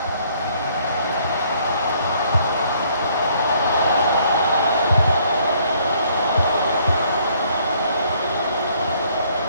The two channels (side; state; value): both; inverted; correlation -0.64